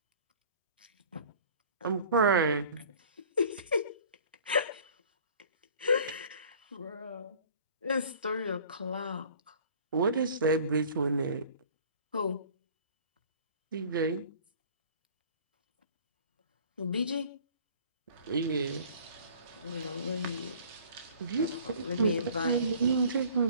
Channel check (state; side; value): inverted; both; correlation -0.49